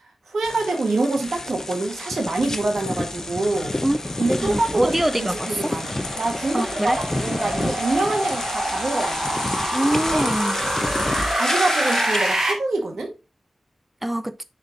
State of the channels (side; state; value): both; normal; correlation 0.91